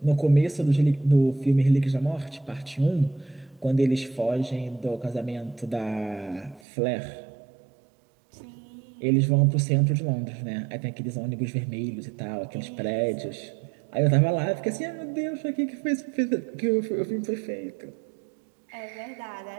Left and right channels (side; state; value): left; drops out; at 6.6 s